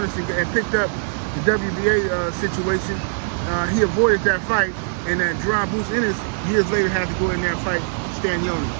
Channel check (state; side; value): silent; left; digital silence